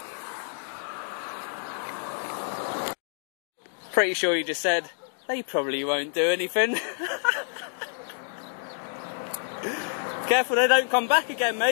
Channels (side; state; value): right; silent; digital silence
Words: Pretty sure he just said, they probably won't do anything. Careful they don't come back again,